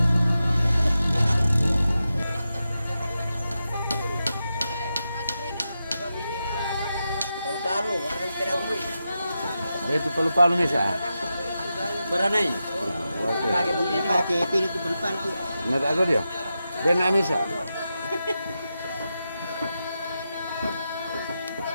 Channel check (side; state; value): both; inverted; correlation -0.89